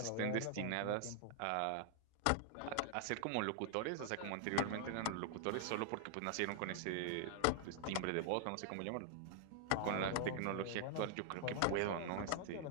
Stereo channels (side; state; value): both; different; correlation 0.00